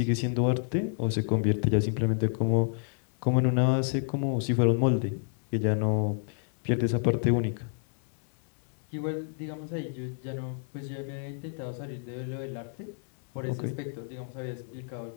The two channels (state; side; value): silent; right; 58 dB below the other